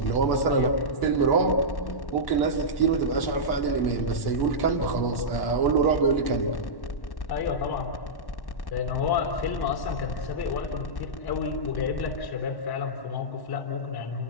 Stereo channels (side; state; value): right; late; 1.1 ms